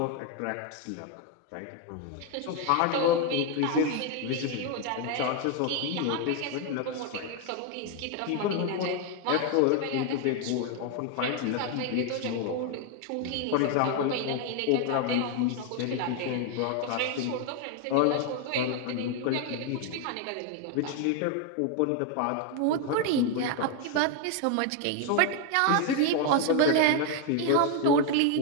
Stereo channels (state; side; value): different; both; correlation 0.01